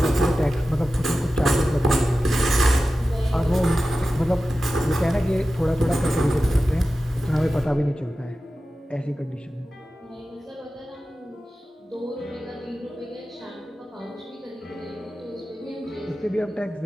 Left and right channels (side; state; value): both; normal; correlation 0.94